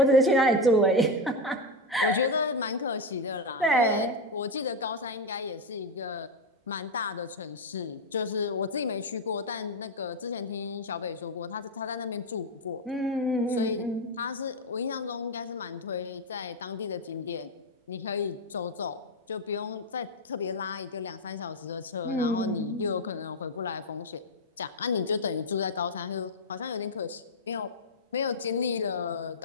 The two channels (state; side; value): normal; both; correlation 0.08